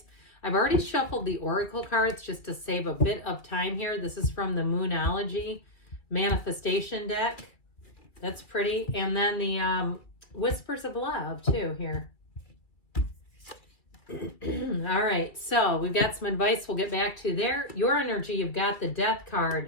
I've already shuffled the Oracle cards just to save a bit of time here. This is from the Moonology Manifestation deck. That's pretty. And then the Whispers of Love, too, here. All right, so we've got some advice we'll get back to there. Your energy, you've got the Death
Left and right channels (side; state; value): right; late; 2.4 ms